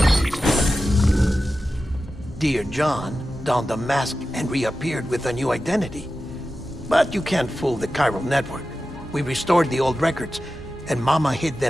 Dear John donned a mask and reappeared with a new identity. But you can't fool the chiral network. We restored the old records, and Mama hid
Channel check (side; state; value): both; normal; correlation 0.93